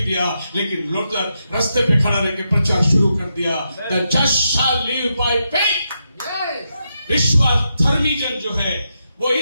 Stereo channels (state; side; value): inverted; both; correlation -0.84